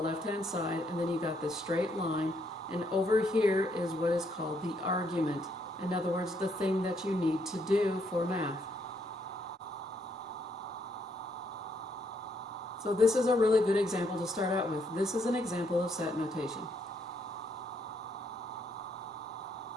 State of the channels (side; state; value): both; normal; correlation 0.73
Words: left-hand side, and then you got this straight line. And over here is what is called the argument. In other words, the thing that you need to do for math. So this is a really good example to start out with. This is an example of set notation.